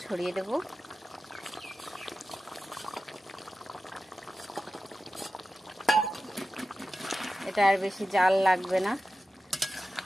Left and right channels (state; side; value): normal; both; correlation 0.94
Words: ছড়িয়ে দেব। এটা আর বেশি জাল লাগবে না,